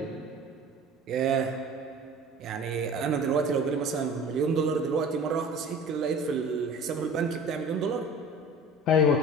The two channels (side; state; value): both; normal; correlation 0.41